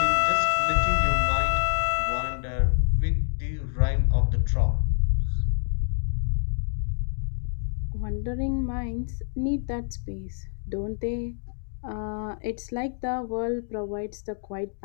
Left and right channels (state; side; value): silent; right; digital silence